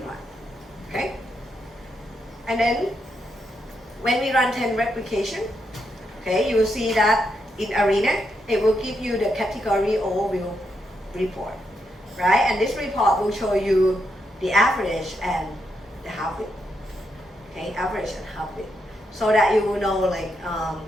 run, okay? And then when we run 10 replication, okay, you will see that in ARENA, it will give you the category overview report, right? And this report will show you the average and the half-width, okay, average and half-width, so that you will know like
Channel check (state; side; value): normal; both; correlation 0.81